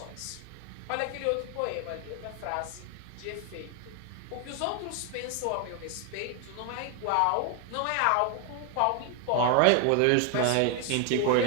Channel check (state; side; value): different; both; correlation 0.01